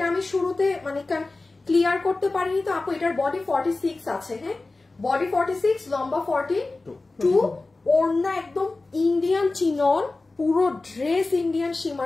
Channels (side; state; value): right; quieter; 3.3 dB